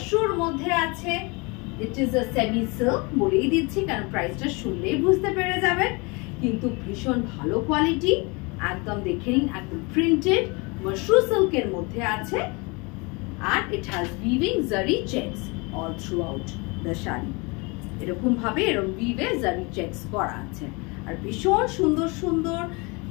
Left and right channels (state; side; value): quieter; right; 28.3 dB